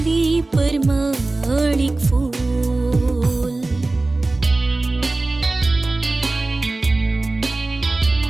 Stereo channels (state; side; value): quieter; left; 3.1 dB